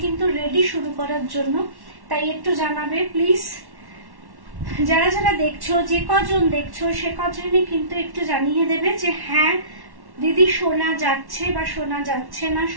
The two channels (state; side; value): late; left; 1.1 ms